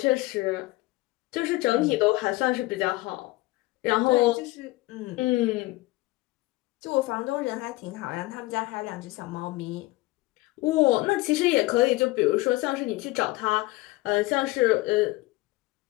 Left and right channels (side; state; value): right; quieter; 20.2 dB